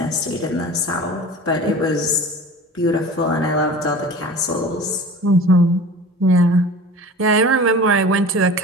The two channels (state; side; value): normal; both; correlation 0.38